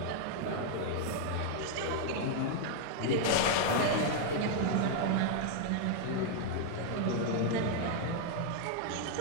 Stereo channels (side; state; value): both; different; correlation 0.00